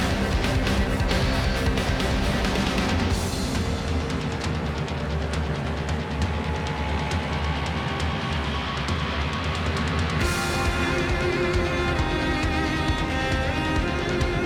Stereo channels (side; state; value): both; identical; correlation 1.00